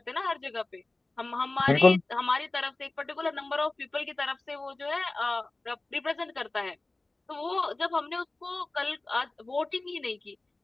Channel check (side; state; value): right; quieter; 3.1 dB